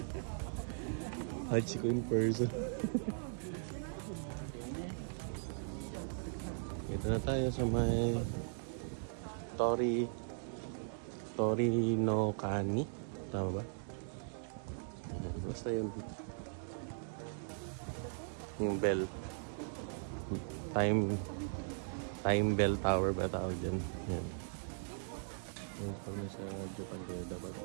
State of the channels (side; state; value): left; silent; digital silence